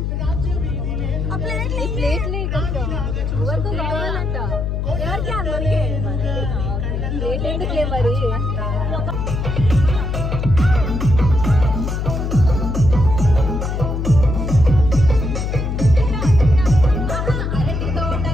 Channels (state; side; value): noise; left; hum, 2 dB below the sound